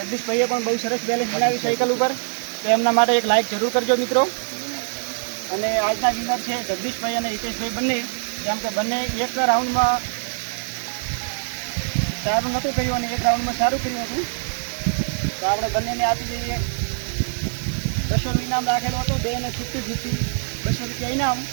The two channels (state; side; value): silent; left; digital silence